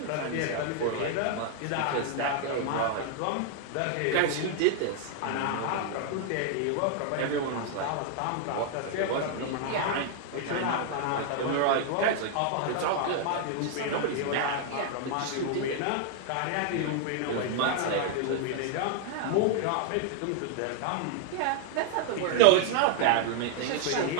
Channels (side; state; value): both; different; correlation 0.00